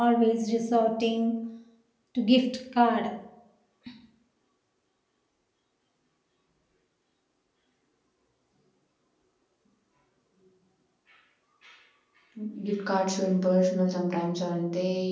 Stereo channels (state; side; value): identical; both; correlation 1.00